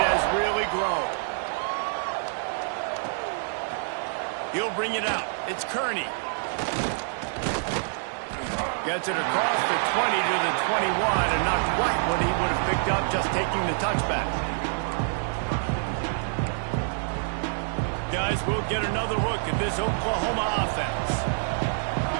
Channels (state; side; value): silent; left; digital silence